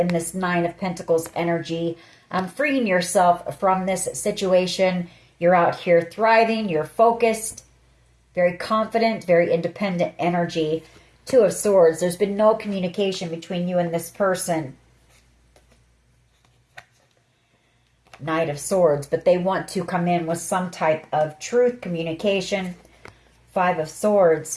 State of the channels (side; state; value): both; identical; correlation 1.00